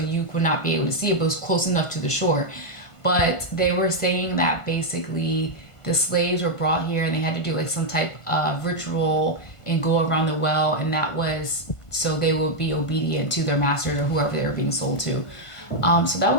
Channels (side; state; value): right; late; 1.5 ms